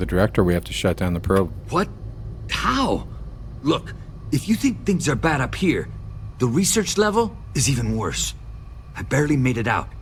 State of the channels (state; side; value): identical; both; correlation 1.00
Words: director. We have to shut down the probe. What? How? Look, if you think things are bad up here, the research level is even worse. I barely made it out,